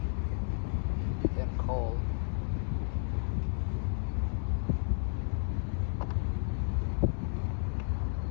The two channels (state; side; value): silent; right; 56 dB below the other